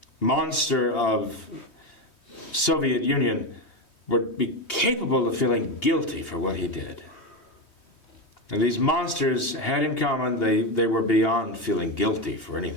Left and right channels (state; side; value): late; right; 3.2 ms